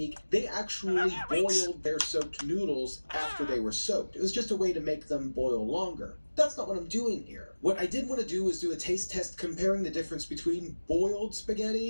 they actually boiled their soaked noodles after they were soaked. It was just a way to make them boil longer. That's not what I'm doing here. What I did want to do is do a taste test comparing the difference between boiled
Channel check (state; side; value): inverted; both; correlation -1.00